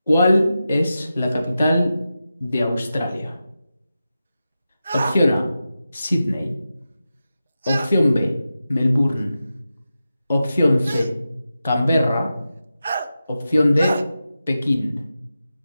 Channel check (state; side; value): inverted; both; correlation -0.91